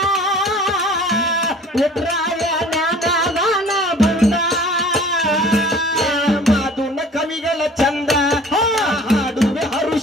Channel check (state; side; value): normal; both; correlation 0.48